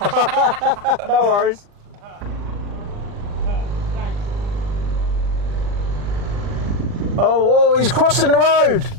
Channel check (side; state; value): left; late; 39 ms